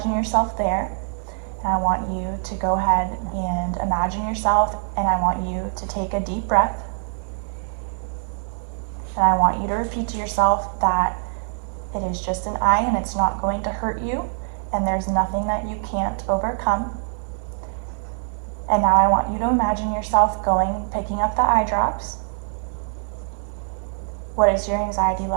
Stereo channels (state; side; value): silent; left; 63 dB below the other